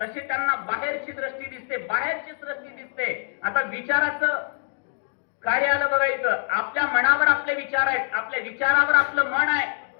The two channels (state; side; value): silent; right; 62 dB below the other